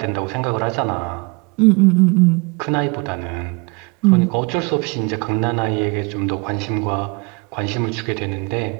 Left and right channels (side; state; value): left; quieter; 30.2 dB